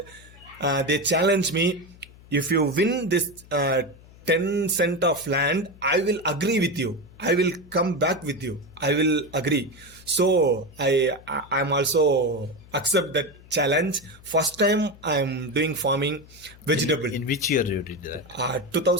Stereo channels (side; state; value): left; noise; hum, 23 dB below the sound